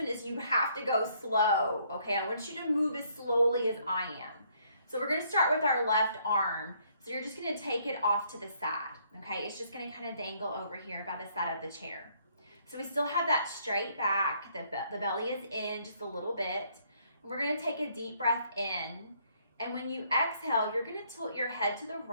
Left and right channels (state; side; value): inverted; both; correlation -0.67